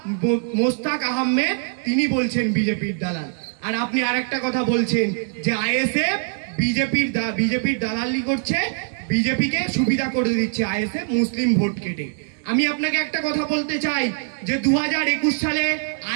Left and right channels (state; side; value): silent; left; digital silence